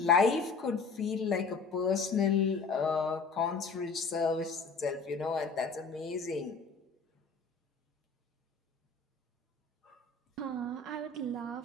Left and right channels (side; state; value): right; quieter; 4.5 dB